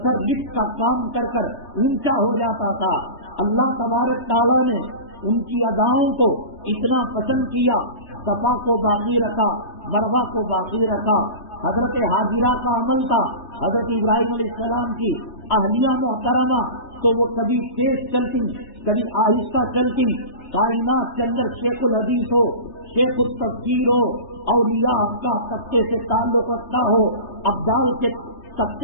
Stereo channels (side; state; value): right; late; 3.3 ms